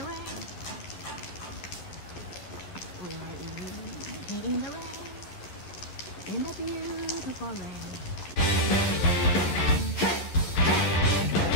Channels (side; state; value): right; late; 11 ms